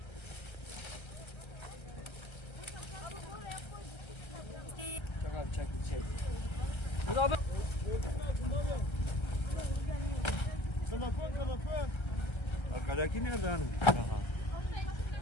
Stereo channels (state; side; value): late; right; 1.3 ms